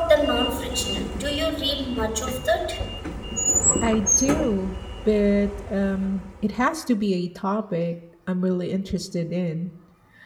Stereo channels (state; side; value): identical; both; correlation 1.00